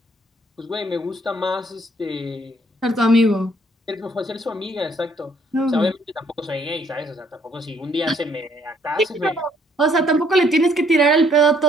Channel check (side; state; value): both; normal; correlation 0.65